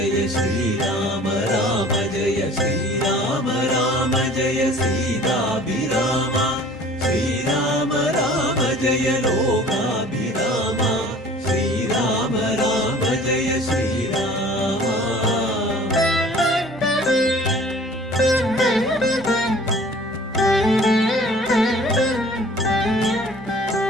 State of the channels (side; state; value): both; normal; correlation 0.48